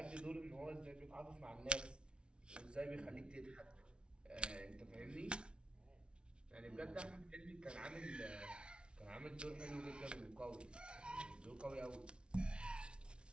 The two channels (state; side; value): late; left; 0.057 ms